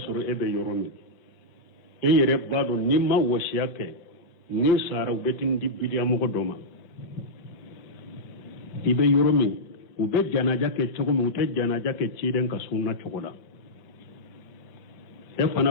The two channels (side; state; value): right; late; 5.2 ms